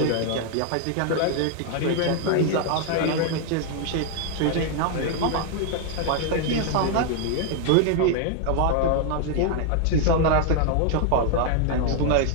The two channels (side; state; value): both; different; correlation 0.00